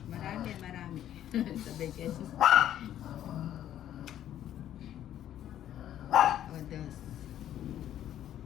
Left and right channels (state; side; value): quieter; right; 11.4 dB